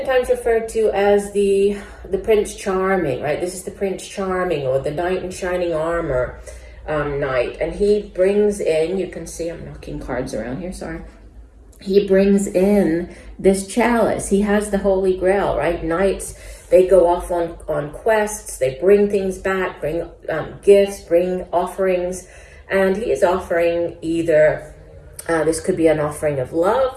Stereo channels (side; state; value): both; identical; correlation 1.00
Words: referred to as the Prince Charming, right? This is the Prince Charming, or the Knight in Shining Armor knight. And he brings in, you can see I'm knocking cards around here, sorry. He brings in this chalice. He has the Holy Grail, right? Knights, they go off on quests, they bring things back, bring gifts, bring offerings, and he is offering either, this could be an offering of